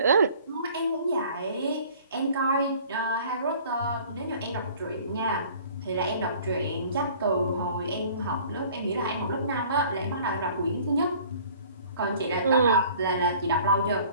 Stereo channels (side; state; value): both; inverted; correlation -0.51